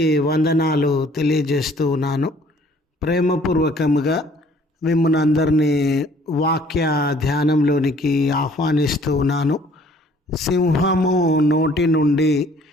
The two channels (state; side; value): normal; both; correlation 0.58